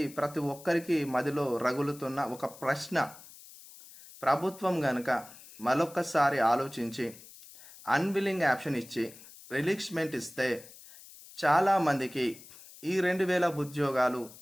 ప్రతి ఒక్కరికి మదిలో రగులుతున్న ఒక ప్రశ్న. ప్రభుత్వం గనుక మరొక్కసారి ఆలోచించి అన్విల్లింగ్ ఆప్షన్ ఇచ్చి రిలీక్స్మెంట్ ఇస్తే చాలామందికి ఈ 2000 ఉద్యోగాలు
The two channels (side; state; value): left; noise; hiss, 19 dB below the sound